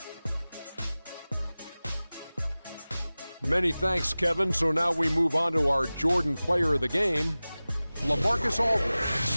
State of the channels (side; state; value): both; inverted; correlation -0.98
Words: Many thanks, Kevin. So now we move on to our Jordan player of the game, LaMarcus